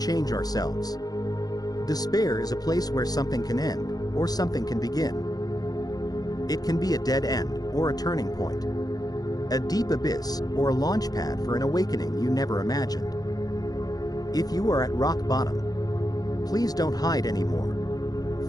ourselves." Despair is a place where something can end, or something can begin. It can be a dead end, or a turning point. A deep abyss, or a launch pad for an awakening you never imagined. If you are at rock bottom, please don't hide anymore.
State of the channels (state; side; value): late; right; 0.19 ms